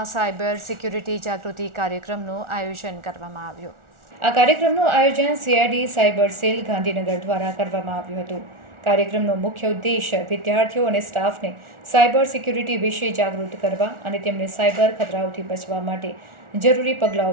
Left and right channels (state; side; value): late; left; 1.4 ms